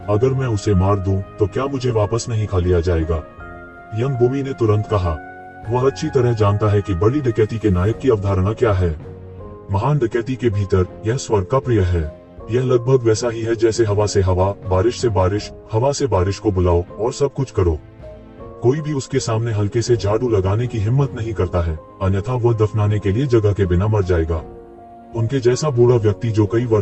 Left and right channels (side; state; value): both; identical; correlation 1.00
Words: अगर मैं उसे मार दूं तो क्या मुझे वापस नहीं खा लिया जाएगा? यंग बूमी ने तुरंत कहा, वह अच्छी तरह जानता है कि बड़ी डकैती के नायक की अवधारणा क्या है। महान डकैती के भीतर यह स्वर्ग का प्रिय है। यह लगभग वैसा ही है जैसे हवा से हवा, बारिश से बारिश, हवा से बारिश को बुलाओ और सब कुछ करो। कोई भी उसके सामने हल्के से झाड़ू लगाने की हिम्मत नहीं करता है, अन्यथा वह दफनाने के लिए जगह के बिना मर जाएगा। उनके जैसा बूढ़ा व्यक्ति जो कई